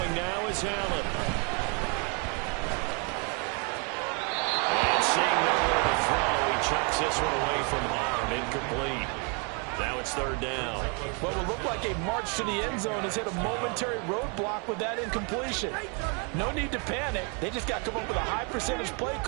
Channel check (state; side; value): quieter; left; 35.4 dB